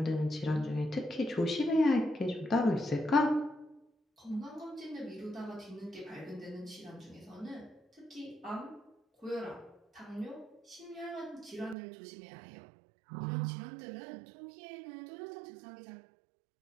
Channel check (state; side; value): drops out; left; at 11.8 s